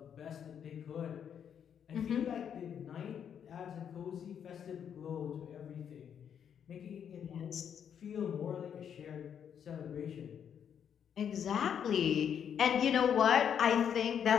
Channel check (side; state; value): right; quieter; 8.3 dB